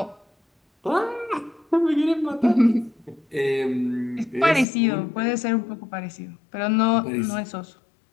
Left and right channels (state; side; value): drops out; right; at 4.7 s